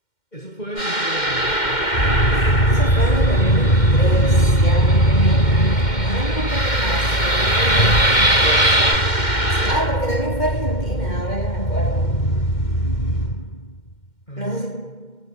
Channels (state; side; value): late; right; 2.1 ms